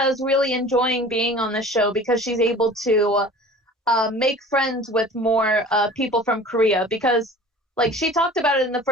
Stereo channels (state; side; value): normal; both; correlation 0.43